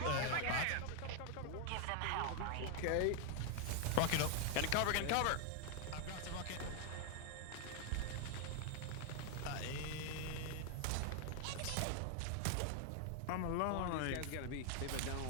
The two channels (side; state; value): both; different; correlation 0.00